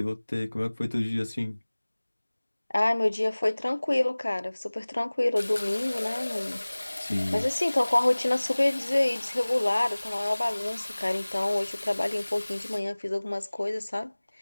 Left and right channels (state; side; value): inverted; both; correlation -1.00